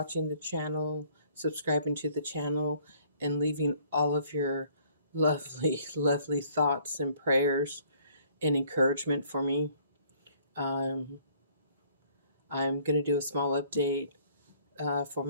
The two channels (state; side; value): inverted; both; correlation -0.60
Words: the channel, subscribing to the channel, and leaving all of your lovely, lovely thoughts and prayers and encouragement for me. Um, I'm going to do a small update for